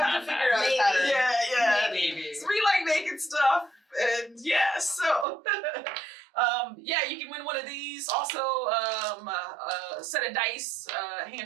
to figure out a pattern. Yeah. Maybe. So we like making stuff, and yeah, so yeah, you can win one of these. Also, a set of dice, a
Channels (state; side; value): drops out; left; at 5.2 s